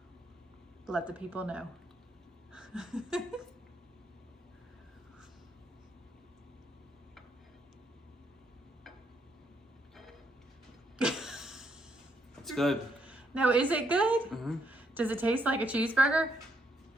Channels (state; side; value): normal; both; correlation 0.75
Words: Let the people know. It's good. No, is it good? Mm-hmm. Does it taste like a cheeseburger?